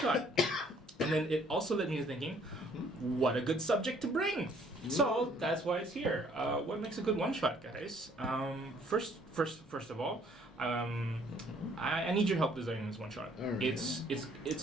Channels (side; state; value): both; normal; correlation 0.61